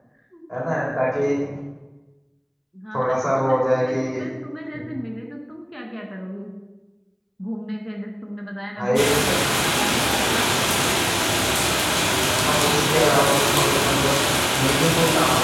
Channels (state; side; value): identical; both; correlation 1.00